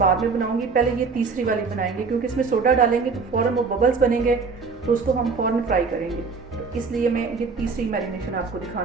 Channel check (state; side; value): quieter; left; 4.8 dB